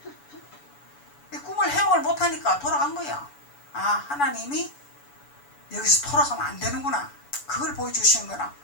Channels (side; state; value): right; late; 7.0 ms